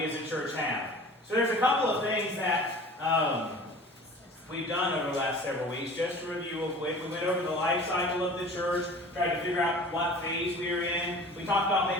as a church have. So there's a couple of things that we've done over the last several weeks. Just to review real quick, we went over the life cycle of the church, tried to figure out what phase we were in. We talked about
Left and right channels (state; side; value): normal; both; correlation 0.43